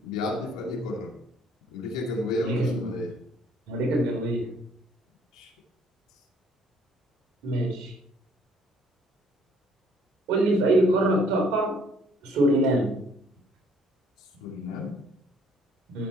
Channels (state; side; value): normal; both; correlation 0.62